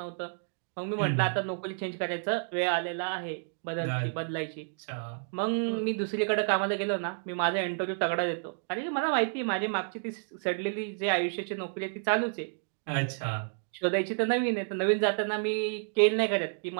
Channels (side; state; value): left; silent; digital silence